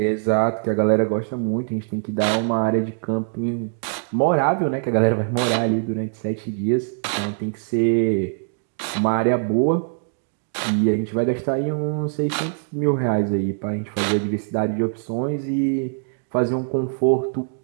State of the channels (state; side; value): silent; left; digital silence